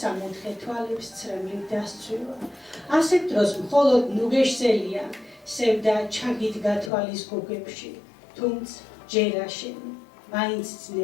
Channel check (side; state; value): right; drops out; at 6.9 s